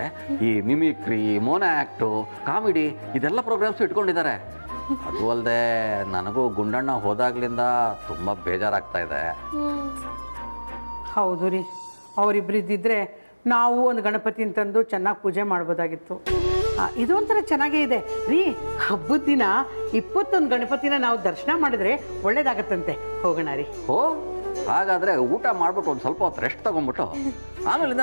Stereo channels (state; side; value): inverted; both; correlation -1.00